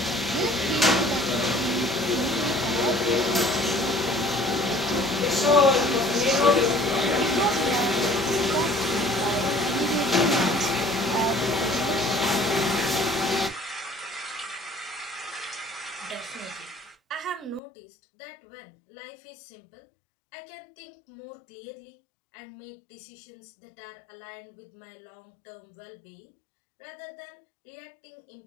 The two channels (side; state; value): right; drops out; at 17.6 s